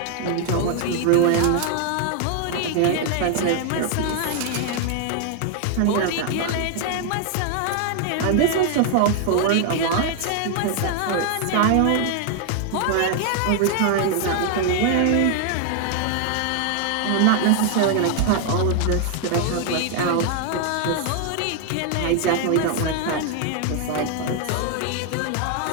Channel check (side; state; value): both; different; correlation 0.00